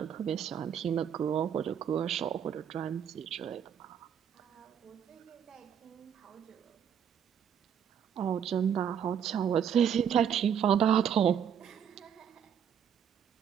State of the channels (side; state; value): left; quieter; 8.5 dB